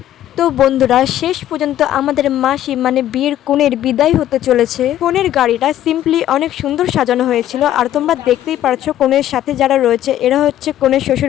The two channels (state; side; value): quieter; right; 12.3 dB